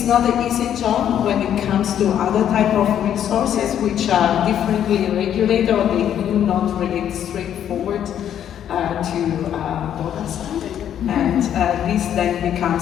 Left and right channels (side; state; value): right; quieter; 10.0 dB